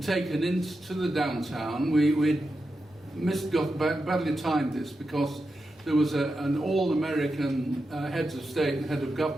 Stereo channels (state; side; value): normal; both; correlation 0.89